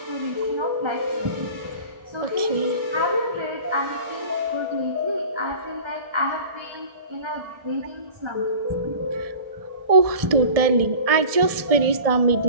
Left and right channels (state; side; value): late; left; 1.7 ms